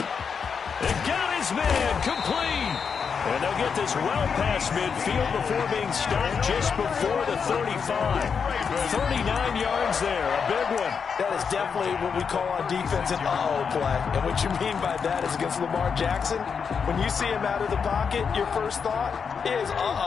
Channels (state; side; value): quieter; right; 6.2 dB